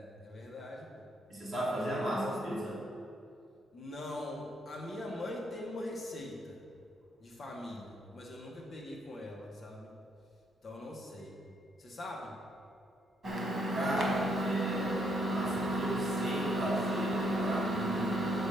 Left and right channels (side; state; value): both; normal; correlation 0.72